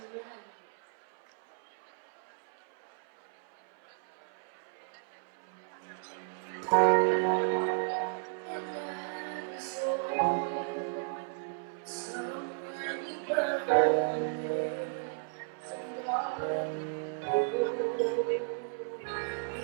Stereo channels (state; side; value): silent; left; 55 dB below the other